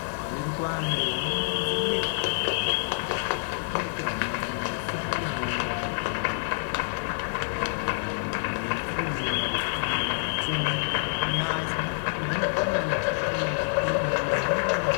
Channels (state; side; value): silent; right; digital silence